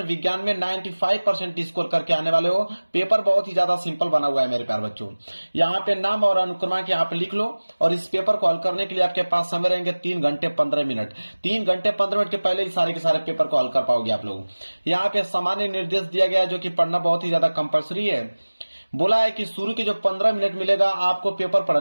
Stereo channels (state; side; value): inverted; both; correlation -1.00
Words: विज्ञान में 95% स्कोर करके आने वाले हो। पेपर बहुत ही ज्यादा सिंपल बना हुआ है मेरे प्यार बच्चों। यहाँ पे नाम और अनुक्रमांक यहाँ पे लिख लो। और इस पेपर को हल करने के लिए आपके पास समय रहेंगे 3 घंटे 15 मिनट। 3 घंटे 15 मिनट के पहले ही सारे के सारे पेपर को हल कर पाओगे आप लोग। यहाँ पे सामान्य निर्देश दिया गया है, जो कि पढ़ना बहुत ही ज्यादा कंपल्सरी है। बोला है कि शुरू के जो 15 मिनट मिलेगा आपको पेपर